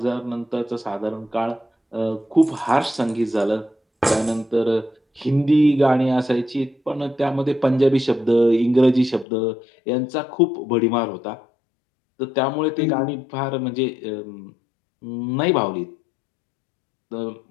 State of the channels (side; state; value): right; drops out; at 9.2 s